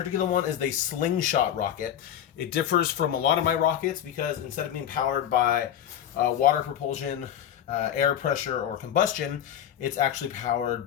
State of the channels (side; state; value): right; quieter; 10.2 dB